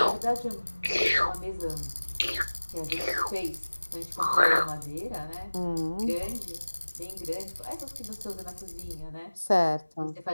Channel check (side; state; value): both; inverted; correlation -1.00